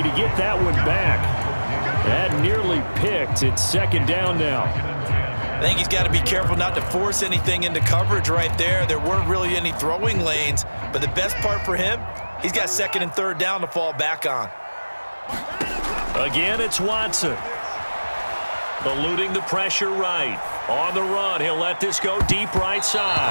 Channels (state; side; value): inverted; both; correlation -1.00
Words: to get that one back. That nearly picked. It's 2nd down now. I think he's got to be careful not to force anything into coverage right there. There weren't really any throwing lanes, but the best part for him, he's got 2nd and 3rd down to fall back on. Again, it's Watson. Eluding the pressure right. On the run, he'll let this go deep right